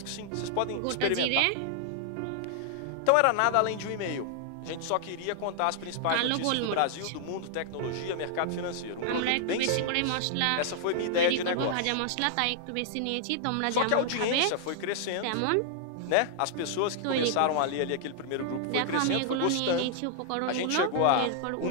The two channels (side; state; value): both; different; correlation -0.01